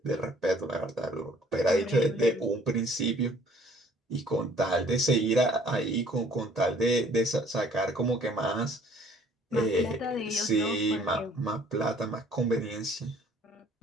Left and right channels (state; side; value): normal; both; correlation 0.57